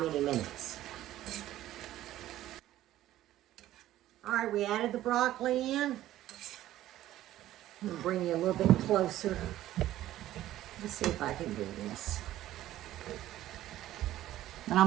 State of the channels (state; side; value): quieter; left; 14.0 dB